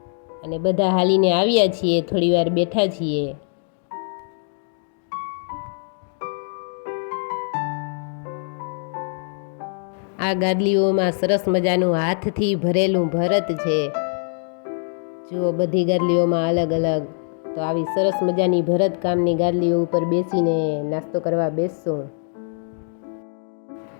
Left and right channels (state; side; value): silent; right; 60 dB below the other